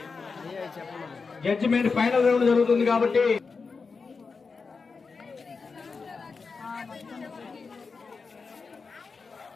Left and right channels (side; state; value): right; quieter; 4.8 dB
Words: జడ్జిమెంట్ ఫైనల్ రౌండ్ జరుగుతుంది కాబట్టి